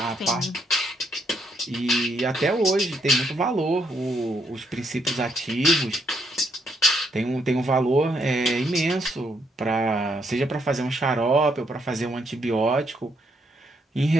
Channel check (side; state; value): both; normal; correlation 0.74